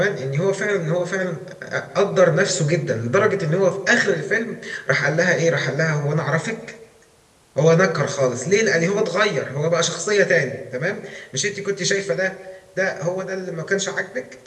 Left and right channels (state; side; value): identical; both; correlation 1.00